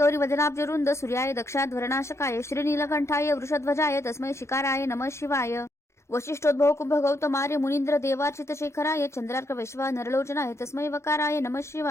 वदनाब्जरुंद सूर्याय दक्षाध्वरनाशकाय श्रीनीलकंठाय वृषध्वजाय तस्मै शिकाराय नमः शिवाय वशिष्ठोद्भव कुंभ गौतमार्य मुनींद्र देवार्चित शेखराय चंद्रार्क वैश्वा नरलोचनाय तस्मै वकाराय नमः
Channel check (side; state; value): right; late; 0.13 ms